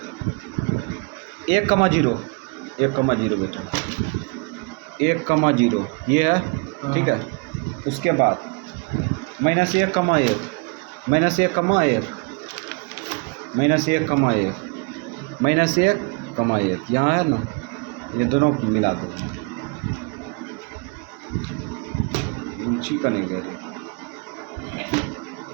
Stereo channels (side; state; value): left; quieter; 33.2 dB